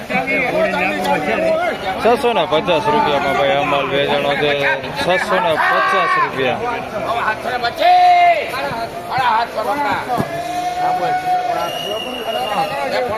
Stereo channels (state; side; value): identical; both; correlation 1.00